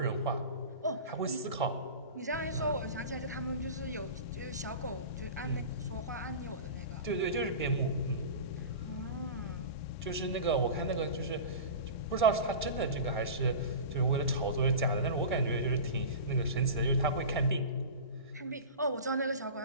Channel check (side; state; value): both; inverted; correlation -0.32